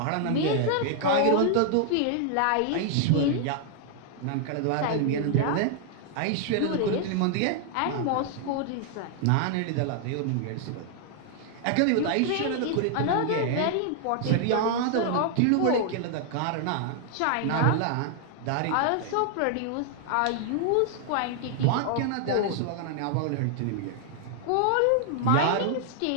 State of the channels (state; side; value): different; both; correlation 0.00